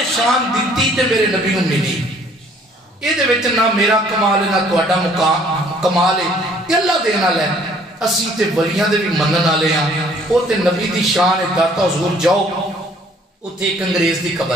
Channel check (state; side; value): normal; both; correlation 0.59